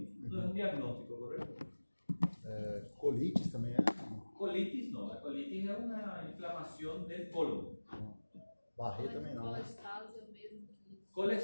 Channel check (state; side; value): inverted; both; correlation -1.00